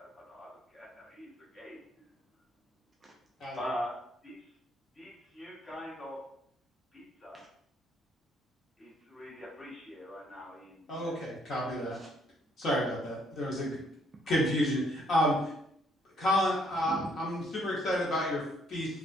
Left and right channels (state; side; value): normal; both; correlation 0.68